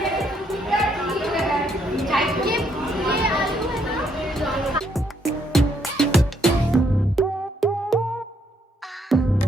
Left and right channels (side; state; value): both; normal; correlation 0.72